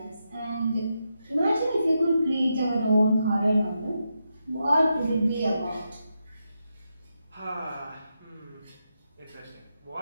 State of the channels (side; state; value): both; inverted; correlation -0.85